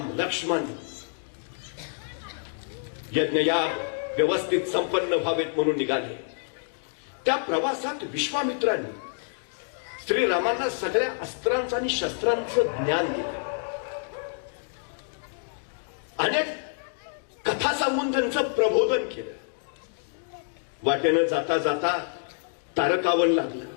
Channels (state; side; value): silent; right; digital silence